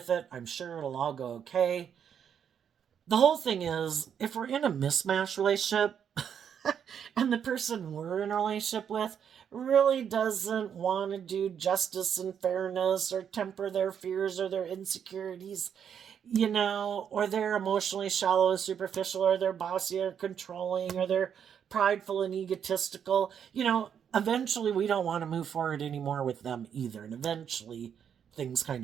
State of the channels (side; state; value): left; quieter; 8.1 dB